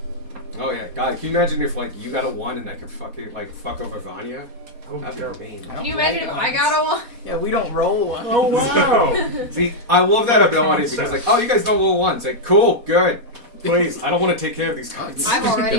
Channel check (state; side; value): late; left; 4.1 ms